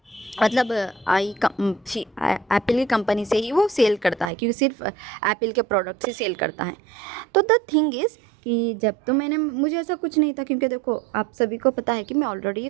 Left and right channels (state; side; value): drops out; left; at 4.3 s